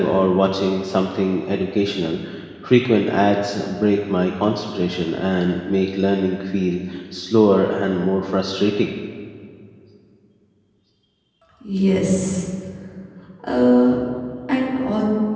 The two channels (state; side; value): identical; both; correlation 1.00